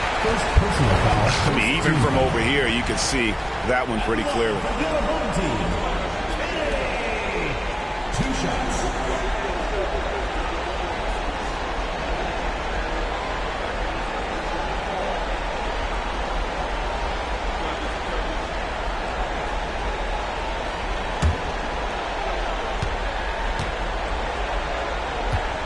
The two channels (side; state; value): both; identical; correlation 1.00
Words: I mean, even from over here, you can see that one pretty clearly. 2 shots.